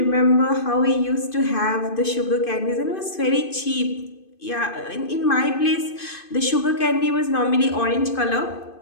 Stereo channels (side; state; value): right; late; 2.5 ms